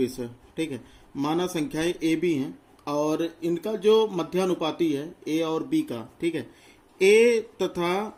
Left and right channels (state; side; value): identical; both; correlation 1.00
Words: है, ठीक है। माना संख्याएं ए बी हैं और इनका जो मध्यानुपाती है ए और बी का, ठीक है, ए